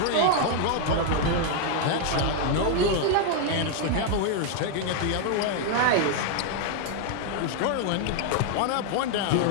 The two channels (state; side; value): different; both; correlation 0.00